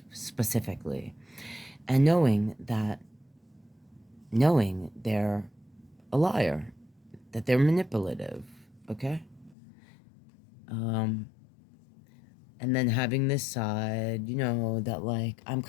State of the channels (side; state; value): right; drops out; at 9.6 s